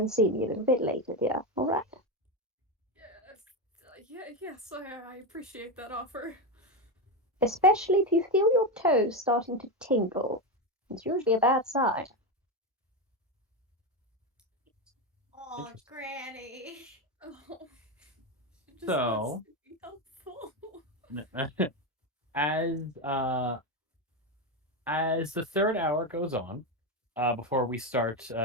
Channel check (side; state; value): both; normal; correlation 0.12